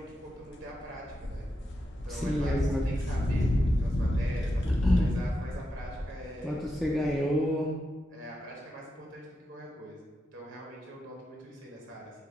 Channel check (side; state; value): both; normal; correlation 0.87